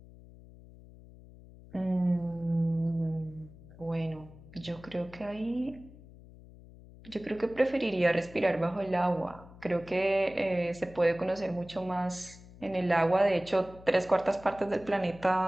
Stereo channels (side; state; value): left; noise; hum, 20 dB below the sound